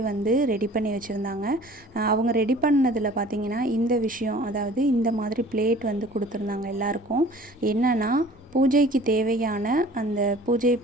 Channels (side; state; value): both; normal; correlation 0.48